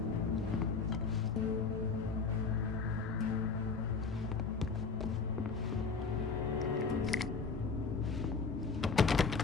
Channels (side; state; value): right; quieter; 4.8 dB